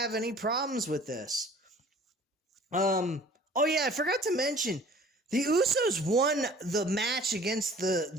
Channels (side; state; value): both; normal; correlation 0.49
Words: any problems with this. Oh yeah, I forgot to mention, the Usos won the match against the